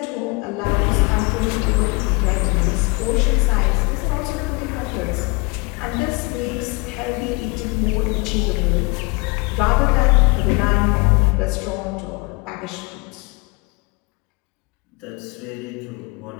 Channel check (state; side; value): quieter; right; 27.2 dB